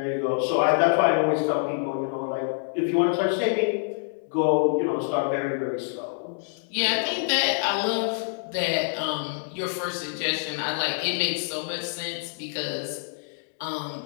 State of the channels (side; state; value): right; silent; digital silence